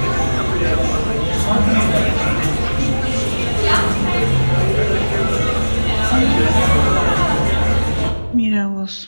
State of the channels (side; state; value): both; inverted; correlation -1.00